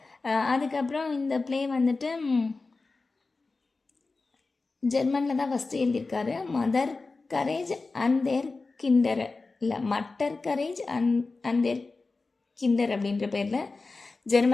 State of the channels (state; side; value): quieter; right; 3.8 dB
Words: அதுக்கப்புறம் இந்த ப்ளே வந்துட்டு ஜெர்மனில் தான் ஃபஸ்ட்டு எழுதியிருக்காரு. Mother courage and their Kinder, இல்லை Mutter Courage and their Kinder அப்படின்ற பேரில்